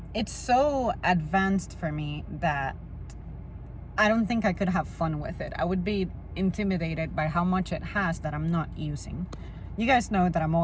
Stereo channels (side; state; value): both; identical; correlation 1.00